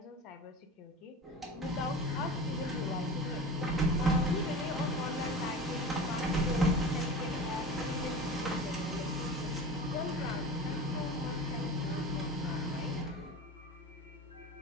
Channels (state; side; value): normal; both; correlation 0.33